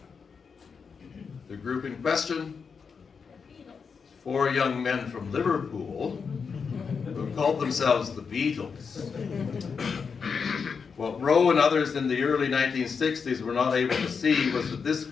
The group in question, 4 young men from Liverpool who called themselves the Beatles. What Rowe and others in the early 1960s were not able to see was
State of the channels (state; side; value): quieter; right; 5.7 dB